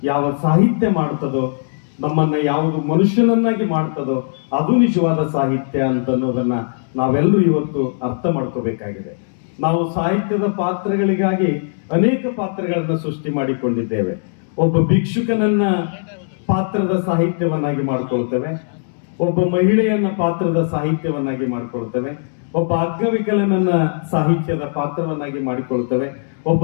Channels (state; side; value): silent; right; digital silence